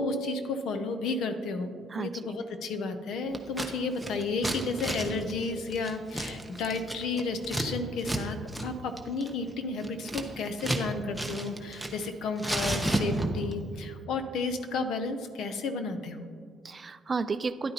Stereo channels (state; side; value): normal; both; correlation 0.62